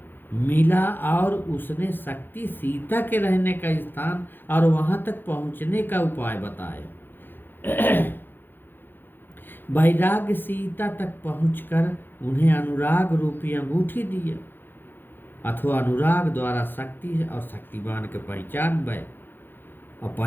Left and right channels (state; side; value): late; right; 0.097 ms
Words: मिला और उसने शक्ति सीता के रहने का स्थान और वहां तक पहुंचने का उपाय बताया। वैराग्य सीता तक पहुंचकर उन्हें अनुराग रूपी अंगूठी दी, अथवा अनुराग द्वारा शक्ति और शक्तिमान के पहचान भय और